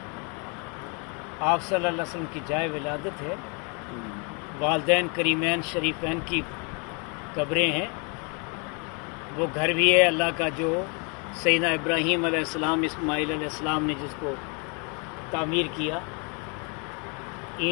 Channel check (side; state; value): right; quieter; 34.7 dB